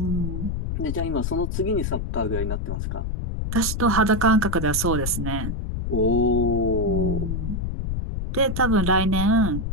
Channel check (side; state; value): left; noise; rumble, 2 dB below the sound